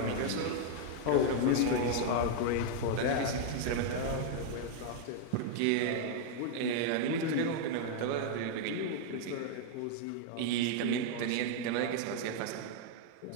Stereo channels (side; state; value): both; different; correlation 0.00